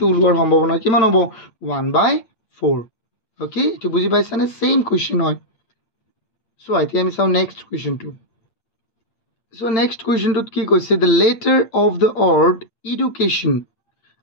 ওলোৱাৰ সম্ভাৱনা কিমান হ'ব 1/4 ওকে এইটো বুজি পাইছানে সেম কোৱেশ্চন হয় সো এতিয়া আমি চাওঁ নেক্সট কোৱেশ্চনটো সো নেক্সট কোৱেশ্চনটোত কি কৈছে the letter of the word education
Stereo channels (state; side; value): late; right; 8.7 ms